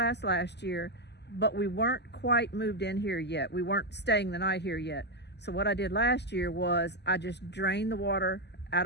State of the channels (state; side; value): late; right; 0.50 ms